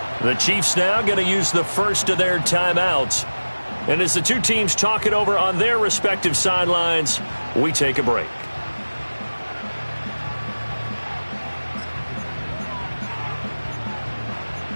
The Chiefs now going to use the first of their timeouts. And as the two teams talk it over on their respective sidelines, we take a break.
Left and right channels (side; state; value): both; inverted; correlation -1.00